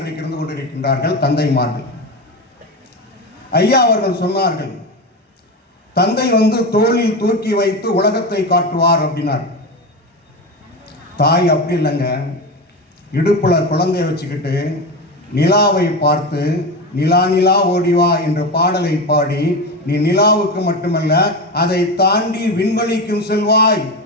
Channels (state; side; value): normal; both; correlation 0.20